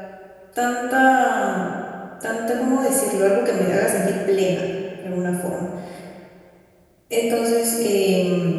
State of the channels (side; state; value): both; identical; correlation 1.00